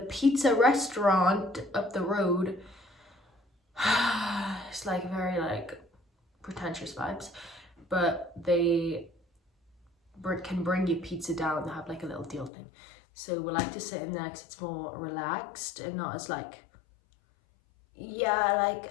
restaurant up the road, it's like very like pretentious vibes, but they can bring you pizza down. They have like a little deal thing. So we like to sit in there because it's more relaxed and not as like, yeah,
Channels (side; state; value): right; drops out; at 12.5 s